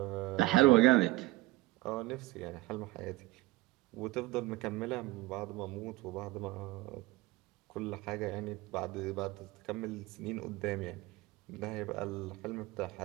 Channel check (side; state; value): left; quieter; 19.6 dB